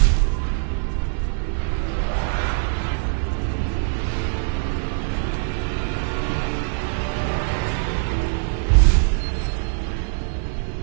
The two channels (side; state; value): left; silent; 64 dB below the other